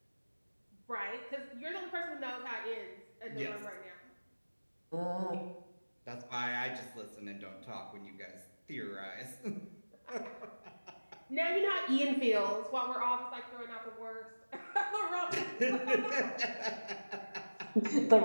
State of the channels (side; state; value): both; inverted; correlation -1.00